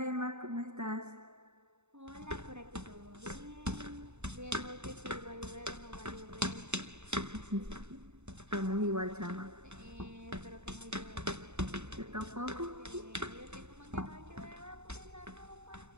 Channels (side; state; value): left; late; 0.82 ms